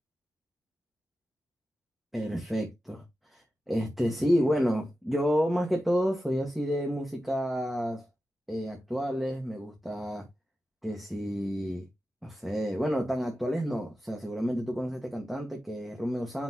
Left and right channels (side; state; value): both; normal; correlation 0.92